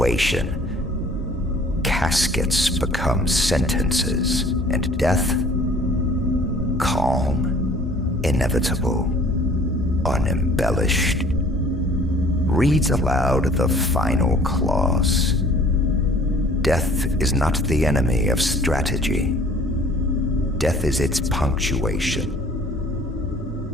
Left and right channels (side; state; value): both; normal; correlation 0.52